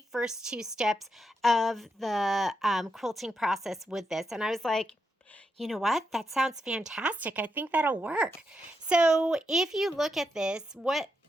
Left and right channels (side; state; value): both; normal; correlation 0.84